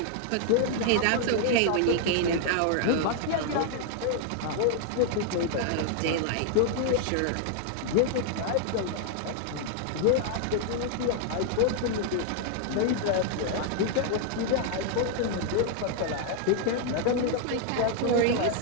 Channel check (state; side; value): different; both; correlation 0.00